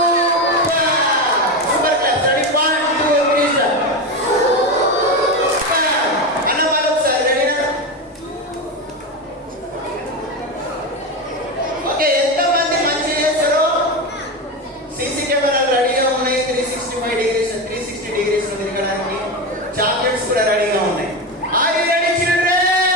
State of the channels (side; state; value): both; normal; correlation 0.17